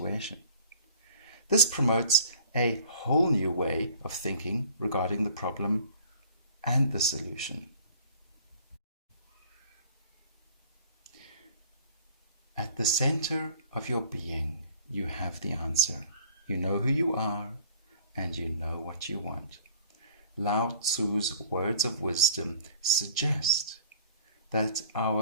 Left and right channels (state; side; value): inverted; both; correlation -0.51